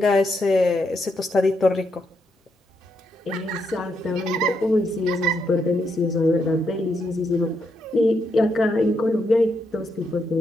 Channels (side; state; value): both; normal; correlation 0.80